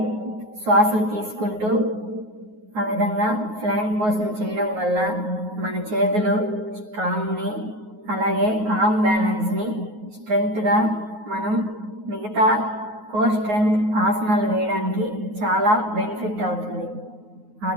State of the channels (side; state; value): left; late; 9.4 ms